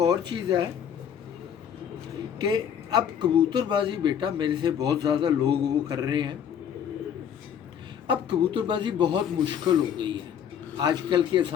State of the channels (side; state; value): right; quieter; 8.5 dB